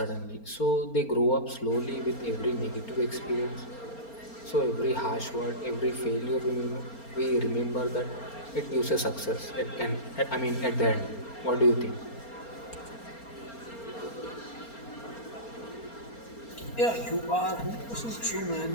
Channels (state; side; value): late; right; 4.3 ms